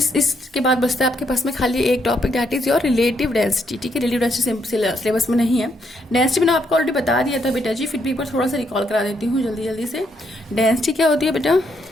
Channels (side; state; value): both; normal; correlation 0.75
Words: इसके बाद बचता है आपके पास में खाली एक topic that is your relative density, ठीक है, रिलेटिव डेंसिटी सिलेबस में नहीं है, डेंसिटी मैंने आपको ऑलरेडी बता दिया था बेटा जी, फिर भी एक बार थोड़ा सा रिकॉल करा देती हूँ जल्दी से। डेंसिटी क्या होती है बेटा,